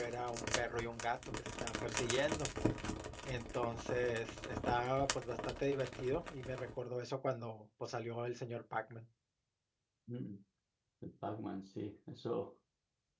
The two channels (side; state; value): both; identical; correlation 1.00